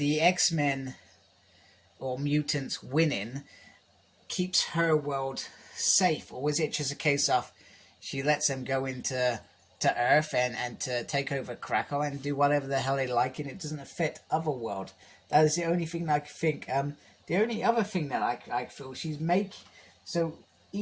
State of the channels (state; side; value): identical; both; correlation 1.00